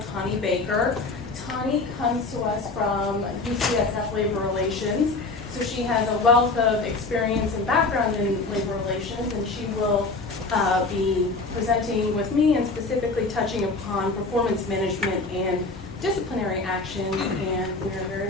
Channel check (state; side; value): quieter; right; 3.5 dB